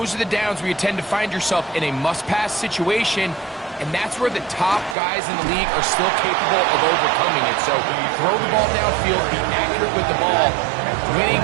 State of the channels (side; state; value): left; drops out; at 5.0 s